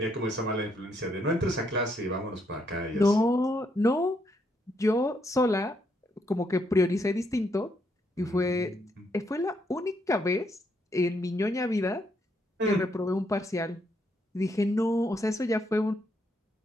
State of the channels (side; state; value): both; normal; correlation 0.75